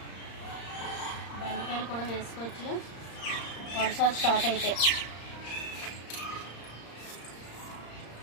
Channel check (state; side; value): late; right; 35 ms